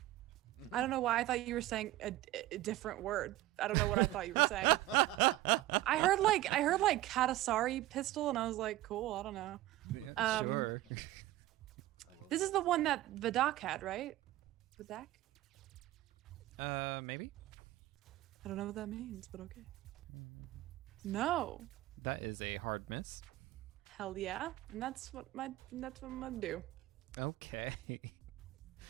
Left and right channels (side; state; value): left; quieter; 16.1 dB